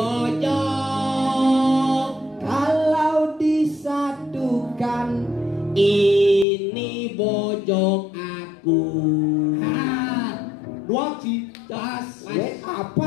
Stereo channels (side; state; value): right; drops out; at 6.5 s